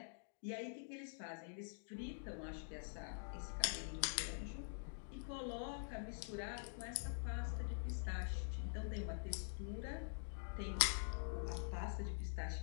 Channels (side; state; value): right; silent; digital silence